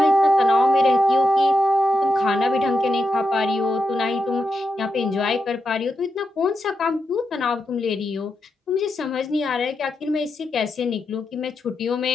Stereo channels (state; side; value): normal; both; correlation 0.86